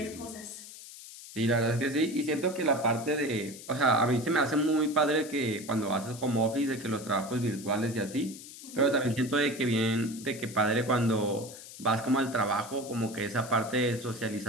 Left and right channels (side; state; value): left; noise; hiss, 15 dB below the sound